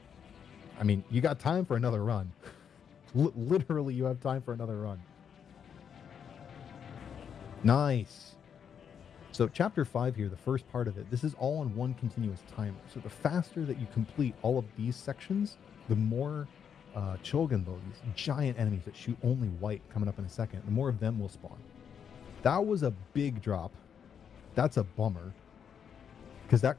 I mean, you got time for another run. Literally, you have time for another run. Nice. So chapter 5 here, the first part of it, this is all on one continuous timer. So the faster that you complete all of these sections, the more Chogenbo, these giant enemies that shoot only white coming up in a second, the more of them will spawn. That was a big drop. That's a bummer. Because that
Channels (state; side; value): quieter; right; 7.7 dB